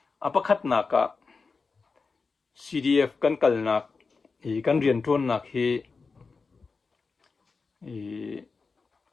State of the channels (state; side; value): quieter; right; 4.5 dB